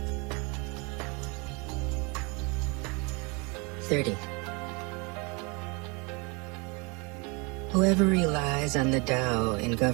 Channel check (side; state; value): left; quieter; 30.1 dB